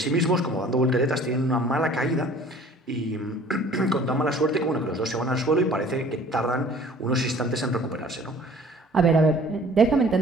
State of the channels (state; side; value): normal; both; correlation 0.51